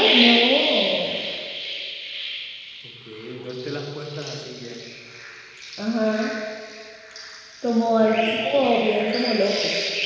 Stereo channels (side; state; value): both; identical; correlation 1.00